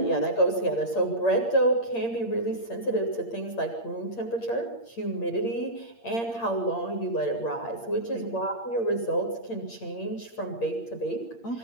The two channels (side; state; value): right; late; 8.7 ms